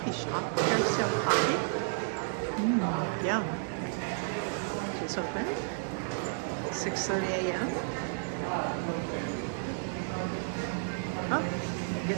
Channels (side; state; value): left; silent; digital silence